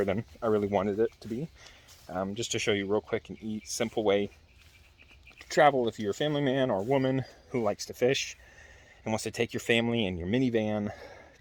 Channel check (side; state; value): both; identical; correlation 1.00